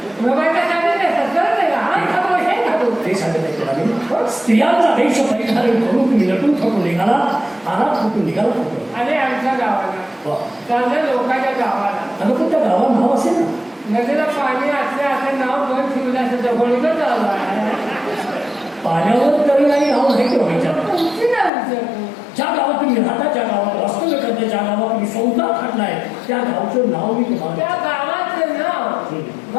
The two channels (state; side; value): drops out; right; at 21.5 s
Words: तुला बायका साडी नेसतात करत नाही का. हा खातो हे खातो ते सांगत नाही तुला मी. स्त्रियांचा देश परिधारण करून तुम्ही नटून थकून निघाला आला कुठून निघाला कुठून. अरे आमच्या गावाला चालल्या लोकांच्या गावाला. अगं पण त्या गावात नाव असेल ना. नदीला पाणी असले असं नाव बंद ठेवलं असं जवळच चालू पाण्यावर तरी नाही नाव नाही ठेवायचं. ज्या गावात तुम्ही राहता ज्या गावात वास्तव्य करता ज्या गावात तुम्ही संसार खाटलाय त्या गावचं नाव मी तुम्हाला त्या गावाचं नाव